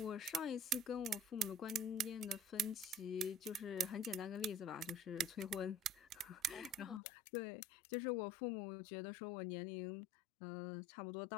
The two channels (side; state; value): right; drops out; at 7.0 s